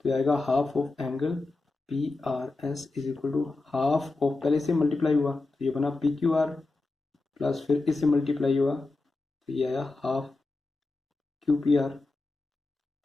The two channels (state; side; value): quieter; right; 3.3 dB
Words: ये आएगा half of angle P R S is equal to half of, पहले से मल्टीप्लाई हुआ तो ये बना पी क्यू आर प्लस फिर इससे मल्टीप्लाई हुआ तो ये आया half Q P R,